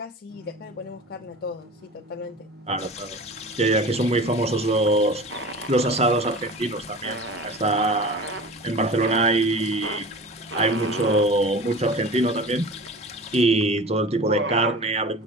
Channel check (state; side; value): normal; both; correlation 0.37